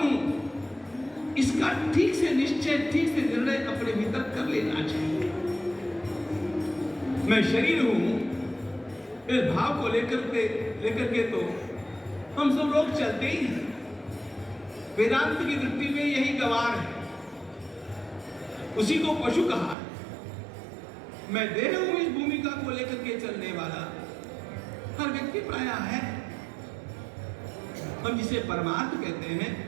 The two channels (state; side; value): drops out; left; at 19.8 s